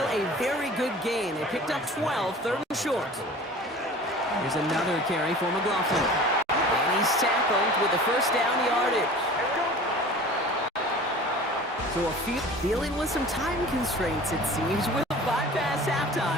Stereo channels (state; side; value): normal; both; correlation 0.42